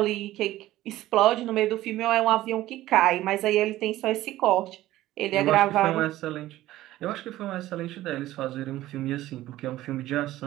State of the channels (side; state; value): left; quieter; 15.5 dB